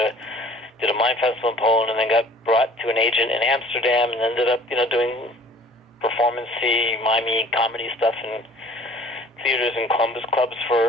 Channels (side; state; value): both; normal; correlation 0.50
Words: did a mime festival in Poland, and then got brought to an agent in Amsterdam, and ended up, doing performance-y, mimey comedy stuff in theaters and clubs